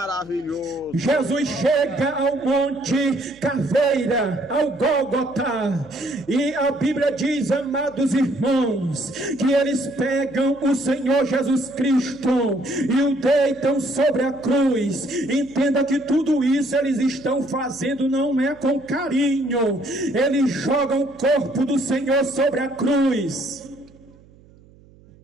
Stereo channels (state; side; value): noise; right; hum, 26 dB below the sound